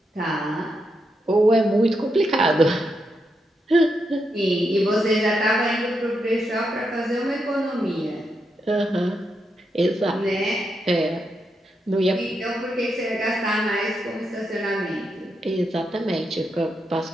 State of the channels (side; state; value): both; normal; correlation 0.83